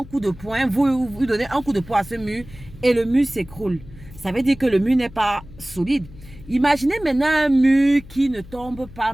coup de poing, vous donnez un coup de poing à ce mur et le mur s'écroule. Ça veut dire que le mur n'est pas solide. Imaginez maintenant un mur qui ne tombe pas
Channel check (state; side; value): noise; left; hum, 18 dB below the sound